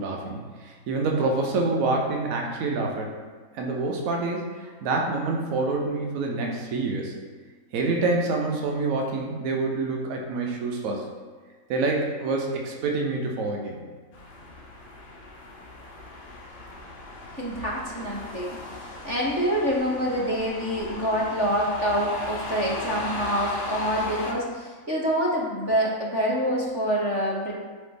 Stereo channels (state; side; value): late; left; 3.4 ms